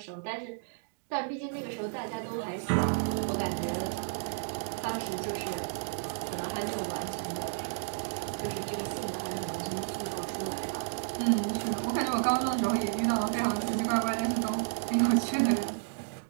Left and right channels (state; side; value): silent; left; digital silence